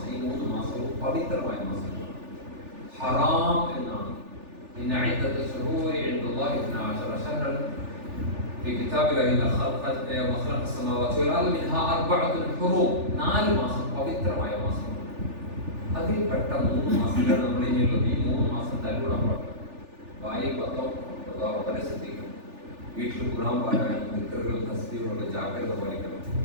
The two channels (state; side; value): late; left; 3.4 ms